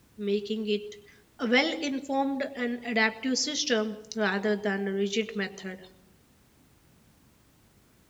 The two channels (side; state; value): both; identical; correlation 1.00